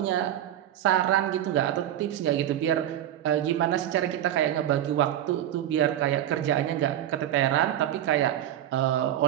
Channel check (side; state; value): left; quieter; 11.8 dB